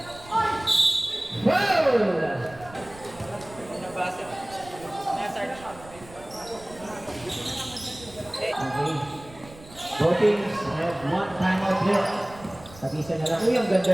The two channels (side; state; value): right; noise; rumble, 20 dB below the sound